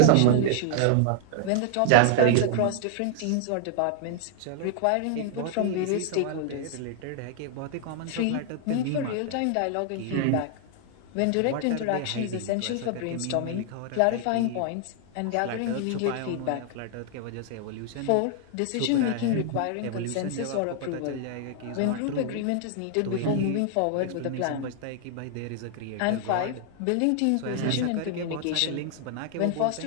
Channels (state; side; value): different; both; correlation -0.01